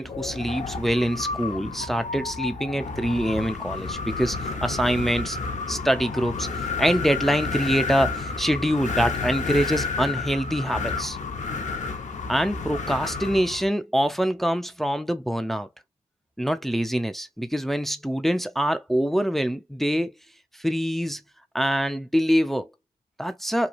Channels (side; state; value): both; normal; correlation 0.84